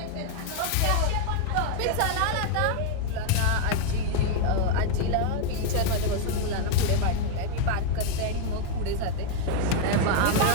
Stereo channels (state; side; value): different; both; correlation 0.00